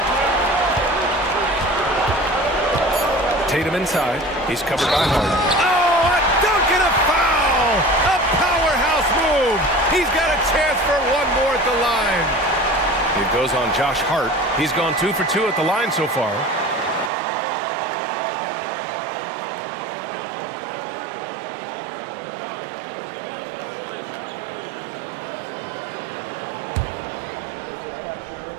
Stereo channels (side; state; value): left; drops out; at 17.1 s